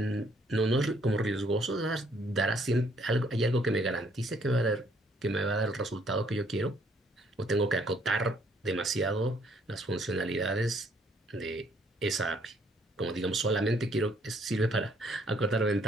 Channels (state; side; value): normal; both; correlation 0.66